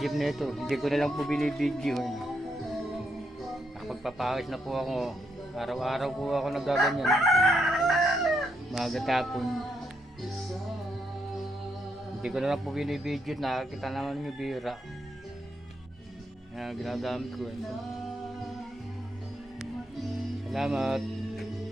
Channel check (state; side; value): normal; both; correlation 0.78